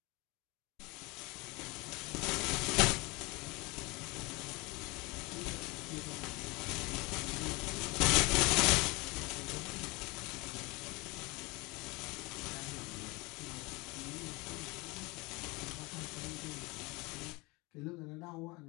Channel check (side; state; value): right; quieter; 25.1 dB